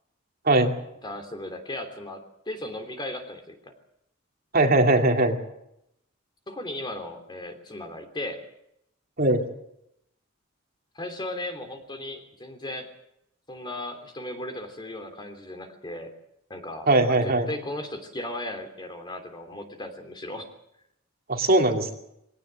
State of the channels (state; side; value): normal; both; correlation -0.02